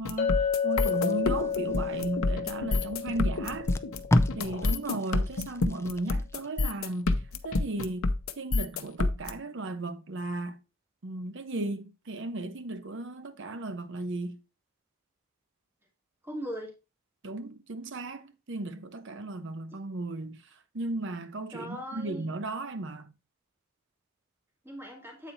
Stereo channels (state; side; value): normal; both; correlation 0.57